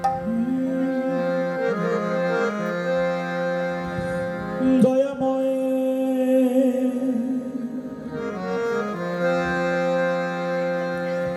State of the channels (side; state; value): both; identical; correlation 1.00